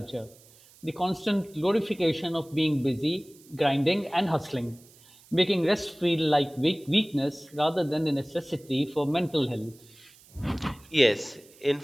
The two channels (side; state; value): right; noise; hiss, 26 dB below the sound